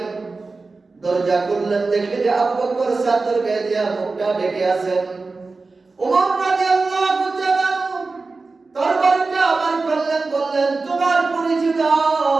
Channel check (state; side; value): quieter; left; 3.8 dB